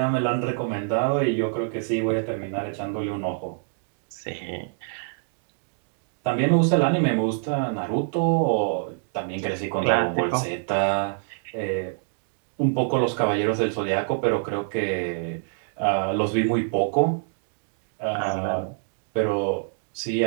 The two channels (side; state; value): left; silent; digital silence